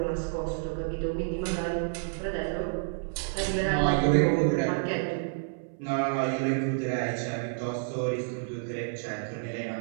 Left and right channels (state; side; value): silent; left; 58 dB below the other